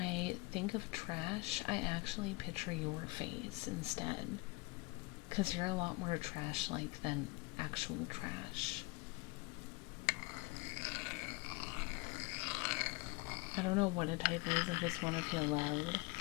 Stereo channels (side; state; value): right; quieter; 24.9 dB